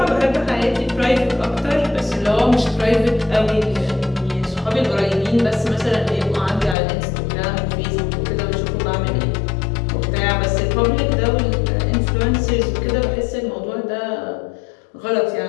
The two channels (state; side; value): drops out; right; at 6.8 s